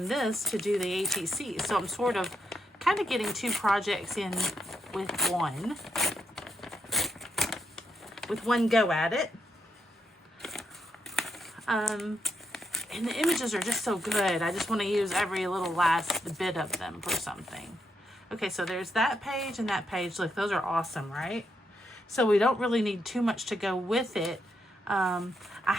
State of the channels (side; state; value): both; normal; correlation 0.79